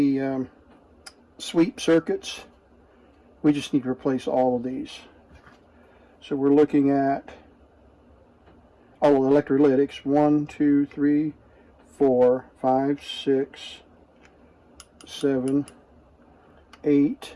sweep circuits, we just need to replace all of these. So we're looking at all the electrolytics: 1, 2, 3, 4, 5, 6, 7, 8,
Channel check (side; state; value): both; identical; correlation 1.00